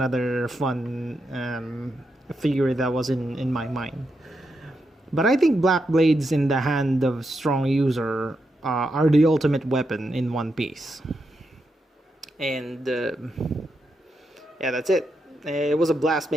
fun theory that was in my mind. But I think black blades in the hand of strong user are the ultimate weapon in One Piece. And yeah, that's it. It was a blast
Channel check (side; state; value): both; normal; correlation 0.84